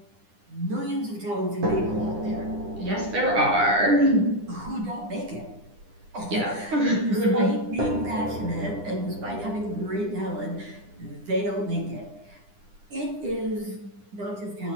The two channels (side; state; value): left; late; 9.9 ms